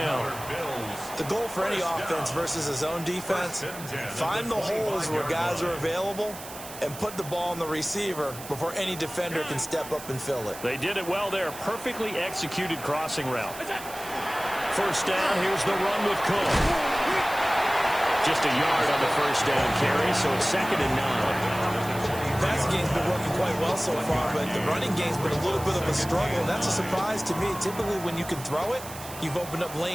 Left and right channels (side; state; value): right; noise; hiss, 13 dB below the sound